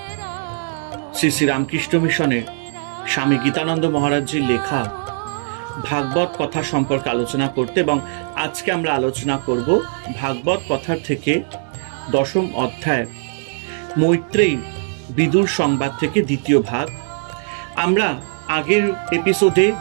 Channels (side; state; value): left; silent; digital silence